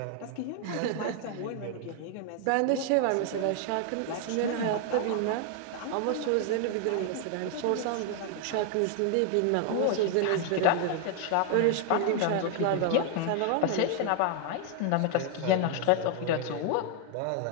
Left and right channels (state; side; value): different; both; correlation 0.00